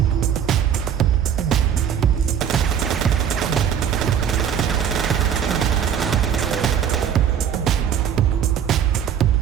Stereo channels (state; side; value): quieter; left; 8.6 dB